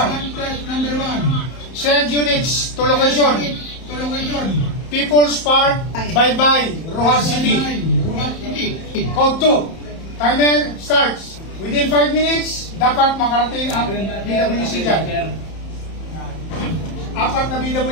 test number 1. Send units to location. To location. People's Park, Bye-Bye, Rojas City. Rojas City. Code 2. Timer starts. Within 5 minutes, dapat makarating ang BWC dyan. 4 na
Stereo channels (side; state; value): right; late; 31 ms